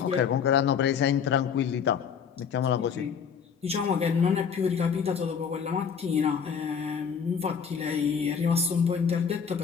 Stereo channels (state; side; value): quieter; right; 6.9 dB